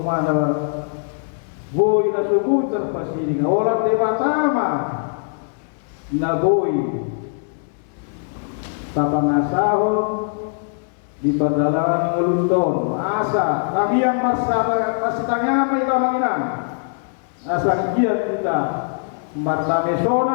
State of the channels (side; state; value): right; silent; 65 dB below the other